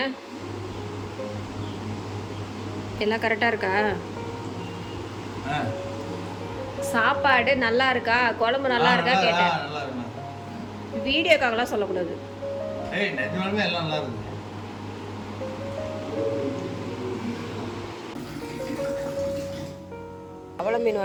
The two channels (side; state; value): both; identical; correlation 1.00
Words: எல்லாம் கரெக்டாக இருக்கா? சாப்பாடு நல்லா இருக்கா? குழம்பு நல்லா இருக்கா கேட்டேன். வீடியோக்காகலாம் சொல்லக்கூடாது. அவ்வளோ மீன்